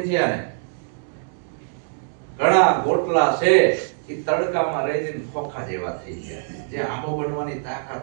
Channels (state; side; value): silent; left; digital silence